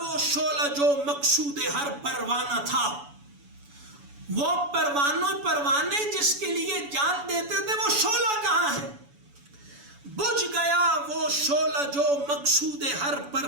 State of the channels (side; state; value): left; late; 7.0 ms